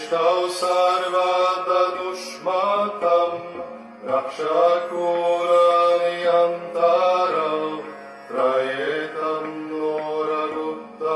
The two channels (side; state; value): both; identical; correlation 1.00